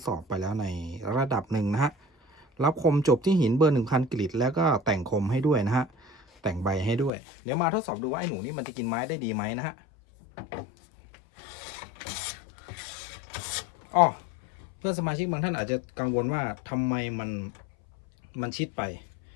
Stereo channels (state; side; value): drops out; right; at 7.1 s